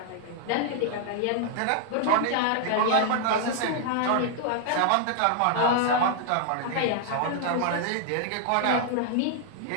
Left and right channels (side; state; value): both; different; correlation 0.00